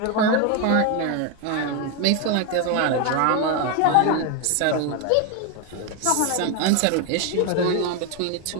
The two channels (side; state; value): both; different; correlation 0.02